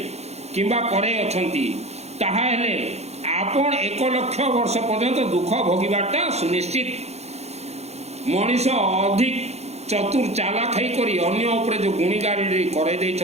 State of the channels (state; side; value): late; left; 0.31 ms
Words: किंबा करे अछंती ताहा हेले आपण 1 लाख वर्ष पर्यंत दुख भोगिबाटा सुनिश्चित। मनीष अधिक चतुर चालाक है करी अन्य उपरे जो गुणी गाड़ी करे